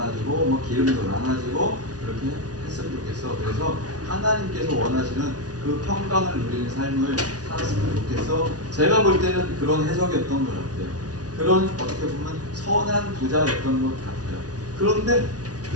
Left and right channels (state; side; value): late; left; 0.68 ms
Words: 뭐 기름도 나눠주고 그렇게 했으면 좋겠어. 그래서 하나님께서 원하시는 그 평강을 누리는 삶을 살았으면 좋겠어. 제가 볼 때는 그런 해석이었던 것 같아요. 그런 어떻게 보면 선한 부자였던 것 같아요. 그런데